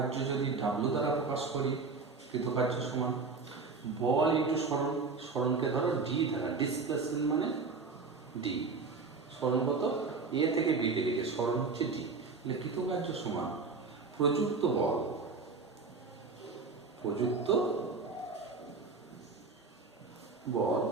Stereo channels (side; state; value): left; quieter; 4.4 dB